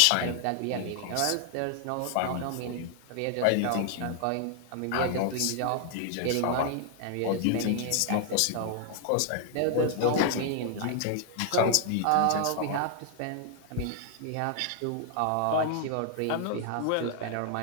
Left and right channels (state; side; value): different; both; correlation 0.00